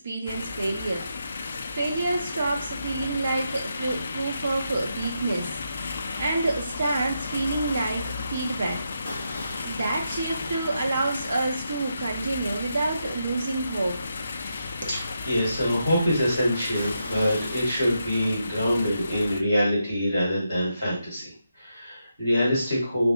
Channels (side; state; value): both; inverted; correlation -0.83